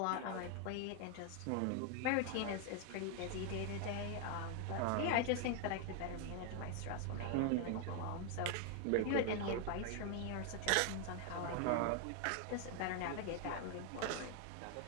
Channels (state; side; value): different; both; correlation 0.01